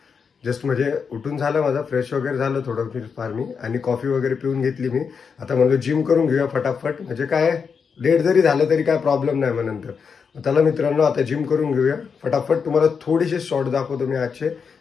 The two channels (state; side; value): quieter; right; 6.0 dB